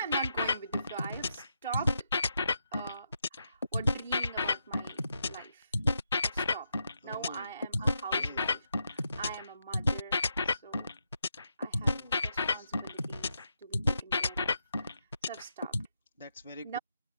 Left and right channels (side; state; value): both; inverted; correlation -0.83